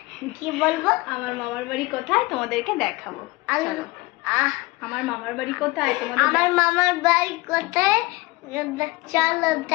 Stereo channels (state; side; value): quieter; right; 22.3 dB